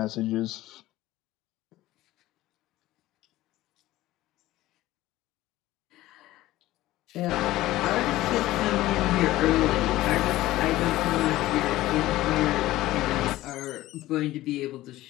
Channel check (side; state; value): right; quieter; 16.3 dB